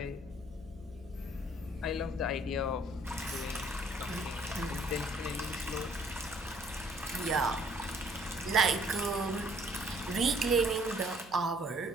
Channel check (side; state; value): right; noise; hum, 21 dB below the sound